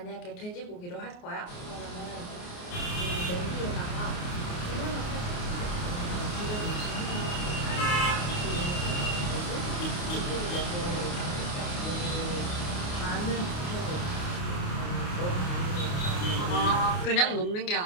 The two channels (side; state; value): right; late; 28 ms